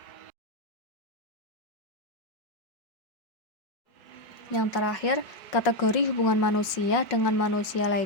Yang terakhir, kategori hubungan manusia dengan manusia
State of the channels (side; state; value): right; late; 5.4 ms